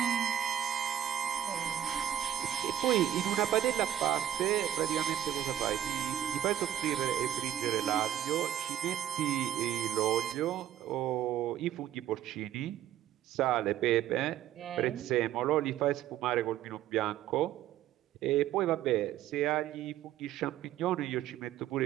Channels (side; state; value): left; quieter; 11.2 dB